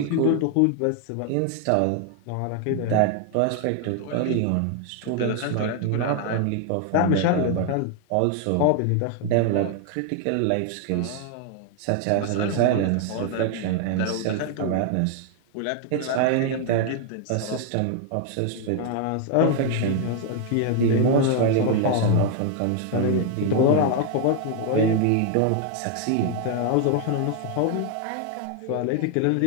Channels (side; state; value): both; different; correlation 0.00